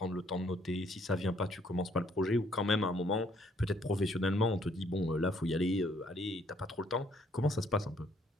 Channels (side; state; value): both; normal; correlation 0.66